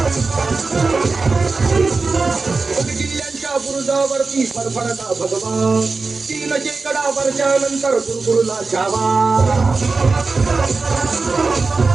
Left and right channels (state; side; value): quieter; left; 4.0 dB